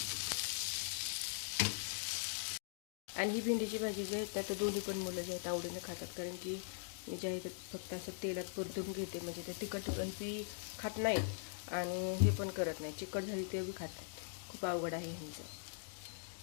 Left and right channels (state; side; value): silent; right; digital silence